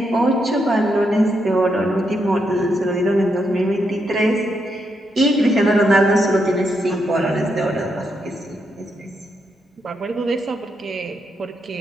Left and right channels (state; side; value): normal; both; correlation 0.81